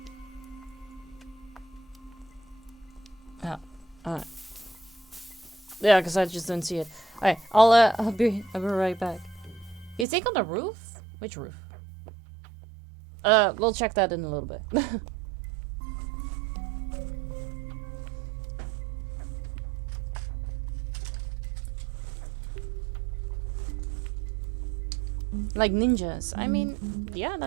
Yeah, alright. Yeah, because I just don't see it. Alright, I'll be right back. You think on the roof? Which roof? We'll check that in a little bit. Like ninjas. I mean, yeah,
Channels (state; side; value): drops out; left; at 10.1 s